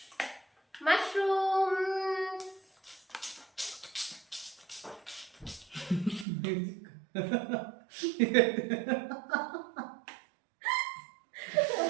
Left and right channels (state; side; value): drops out; left; at 6.2 s